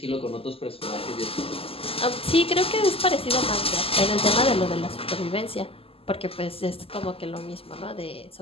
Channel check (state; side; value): late; right; 0.28 ms